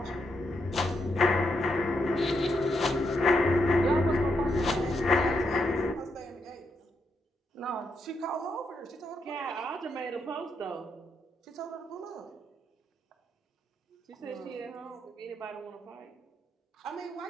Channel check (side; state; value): both; normal; correlation 0.81